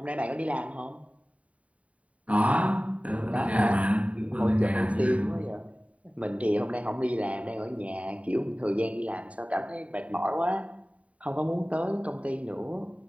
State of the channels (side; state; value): left; late; 0.066 ms